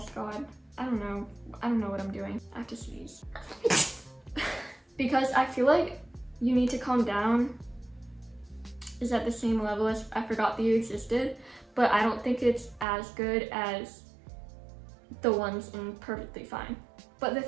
God. I don't know what I'm doing. I have to sneeze. Because I feel like You Need to Calm Down is at the same level as I Forgot That You Existed, but I don't think it's as good as the ones in Perfectly Fine. But the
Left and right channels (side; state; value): left; drops out; at 12.9 s